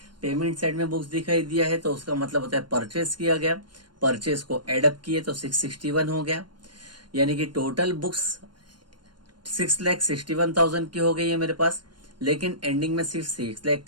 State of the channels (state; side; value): late; left; 0.71 ms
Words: पेमेंट साइड में बुक्स दिखाई दिया है तो उसका मतलब होता है परचेस किया गया, परचेस को एडअप किए तो 661 हो गया। यानी कि टोटल बुक्स 6,61,000 की हो गई है मेरे पास, लेकिन एंडिंग में सिर्फ 6 लाख